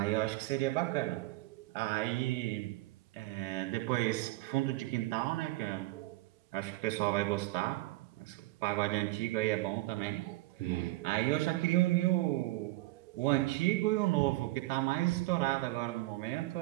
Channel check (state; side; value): quieter; left; 19.7 dB